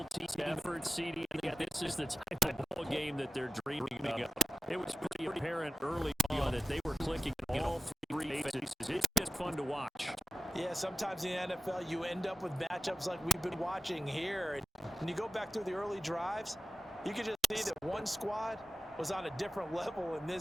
team effort, CD, this is the type of ball game that they're dreaming of. It was pretty apparent early on that they were clicking all 3 phases. It's just fun to watch. Yeah, sometimes in the NFL you end up with matchups like we've been watching here. And when you go back through the early drives, you can just see that one squad was on a different level in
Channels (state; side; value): normal; both; correlation 0.93